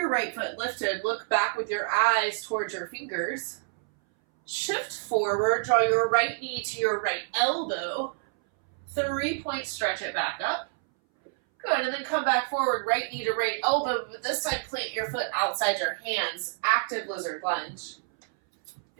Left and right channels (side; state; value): left; silent; 59 dB below the other